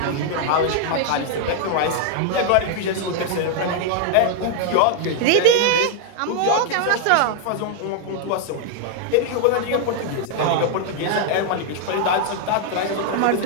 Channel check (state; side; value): different; both; correlation 0.00